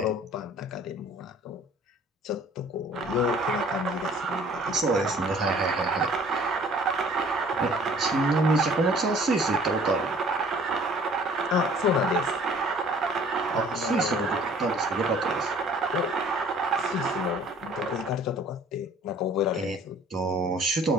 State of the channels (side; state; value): both; normal; correlation 0.53